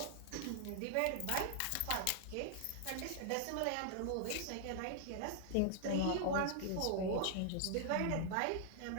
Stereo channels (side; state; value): both; different; correlation 0.00